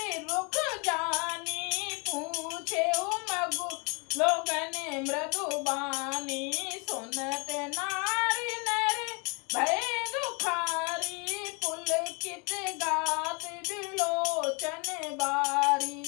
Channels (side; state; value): right; quieter; 31.9 dB